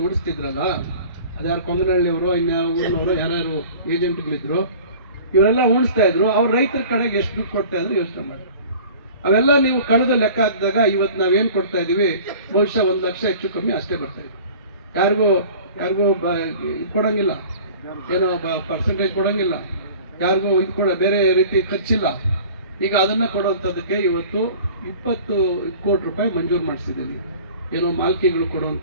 ಉಡಿಸ್ತಿದ್ರಲ್ಲ, ಅದ್ಯಾರು ಕೊಂಗನಹಳ್ಳಿಯವರು, ಇನ್ಯಾವ ಊರಿನವರು ಯಾರ್ಯಾರು ಏಜೆಂಟ್ಗಳಿದ್ರು, ಇವರೆಲ್ಲ ಉಣಿಸ್ತಾ ಇದ್ರು. ಅವ್ರು ರೈತರ ಕಡೆಗೆ ಎಷ್ಟು ದುಡ್ಡು ಕೊಡ್ತಾ ಇದ್ರು ಯೋಚನೆ ಮಾಡಿ. ಅವೆಲ್ಲ ನೀವು ಕಳೆದು ಲೆಕ್ಕ ಹಾಕಿದಾಗ ಇವತ್ತು ನಾವೇನ್ ಕೊಡ್ತಾ ಇದೀವಿ, ಬಹುಶಃ 1 ಲಕ್ಷ ಹೆಚ್ಚು ಕಮ್ಮಿ ಅಷ್ಟೇ ಬರ್ತಾ ಇದೆ. ಯಾರಿಗೂ ಕೊಡಂಗಿಲ್ಲ, ಏನೋ ಪರ್ಸೆಂಟೇಜ್ ಕೊಡಂಗಿಲ್ಲ, ಯಾರಿಗೂ ಇದು ಕೂಡ ಬೇರೆ ರೀತಿ ಖರ್ಚಿಲ್ಲ. ಈಗ ಅದನ್ನ ಕೊಡುವಂಥದ್ದಕ್ಕೆ ಇವತ್ತು 20 ಕೋಟಿ ರೂಪಾಯಿ ಮಂಜೂರು ಮಾಡಿಸಿದ್ದೀವಿ. ಏನೋ ಮಾಲ್ಕಿಗಳು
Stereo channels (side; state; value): both; inverted; correlation -0.44